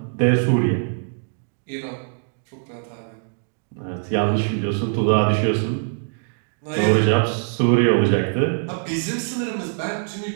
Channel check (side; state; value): left; silent; 64 dB below the other